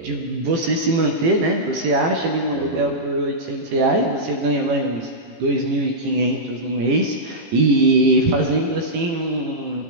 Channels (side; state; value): left; late; 18 ms